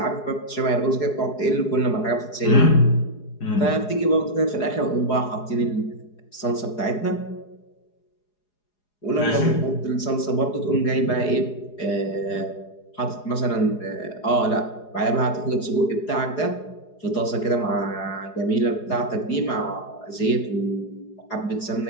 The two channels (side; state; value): right; late; 4.8 ms